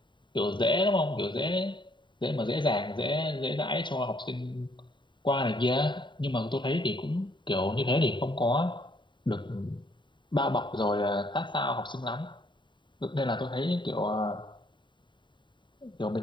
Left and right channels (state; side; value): late; right; 0.23 ms